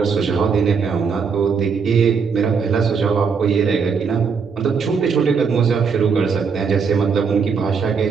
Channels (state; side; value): quieter; left; 5.8 dB